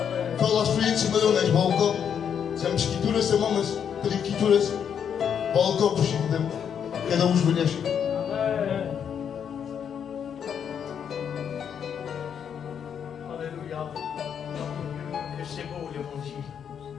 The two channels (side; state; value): right; quieter; 8.0 dB